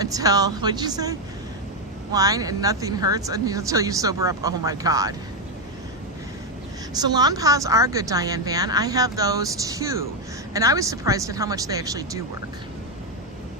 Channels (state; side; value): normal; both; correlation 0.05